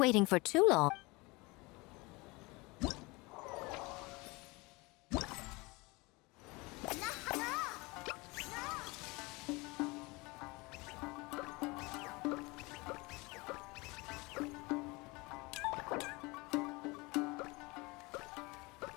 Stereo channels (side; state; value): right; quieter; 24.8 dB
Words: for too long.